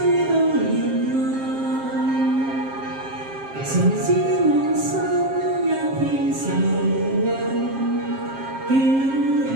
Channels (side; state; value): left; late; 7.5 ms